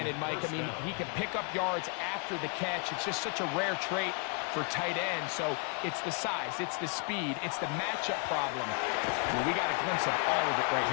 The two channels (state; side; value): quieter; right; 38.3 dB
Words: Mike. I mean, he can pick up yards after the catch. It's just such a rare trait for tight ends. So it's the size, it's the speed, it's the matchup problem. Well, we got a glimpse of all of it right